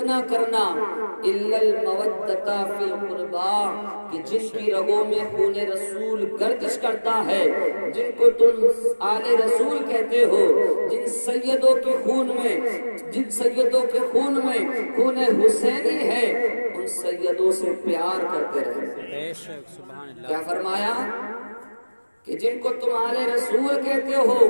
کرنا الا المودۃ فی القربى، کہ جن کی رگوں میں خون رسول گردش کرتا ہے، جن کو تم آل رسول کہتے ہو، جن سیدوں کے خون میں خون حسینی ہے، ان سیدوں سے پیار کرتے رہے۔ کیا فرمایا کہ جن کو تم آل رسول کہتے ہو،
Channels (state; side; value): inverted; both; correlation -1.00